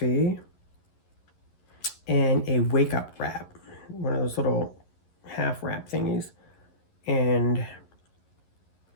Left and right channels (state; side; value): late; right; 11 ms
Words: and a wake up wrap, one of those little half wrap thingies. And